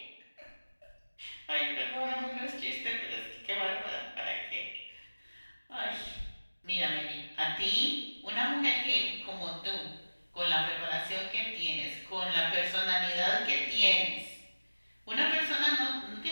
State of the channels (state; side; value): inverted; both; correlation -1.00